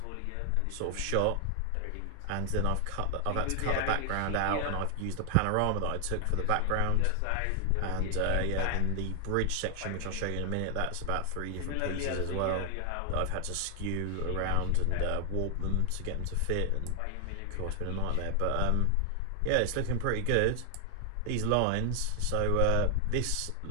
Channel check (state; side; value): different; both; correlation 0.00